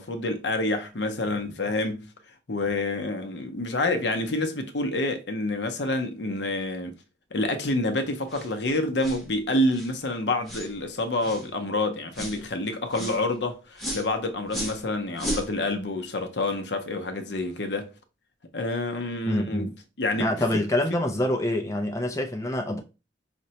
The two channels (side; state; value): both; normal; correlation 0.33